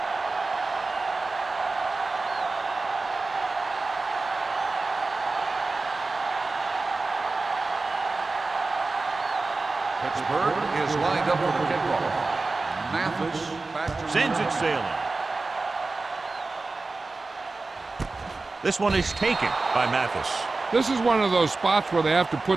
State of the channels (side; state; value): left; quieter; 3.6 dB